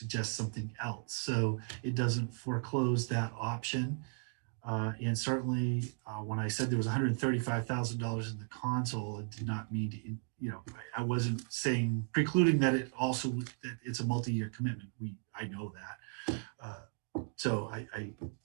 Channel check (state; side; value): silent; left; 54 dB below the other